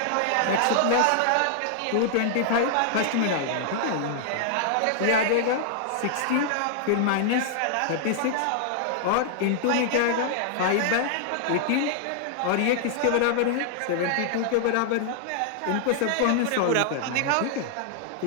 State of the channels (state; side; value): different; both; correlation -0.01